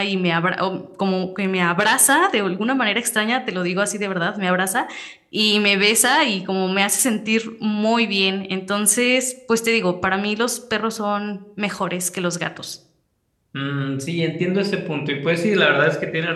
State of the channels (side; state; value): both; identical; correlation 1.00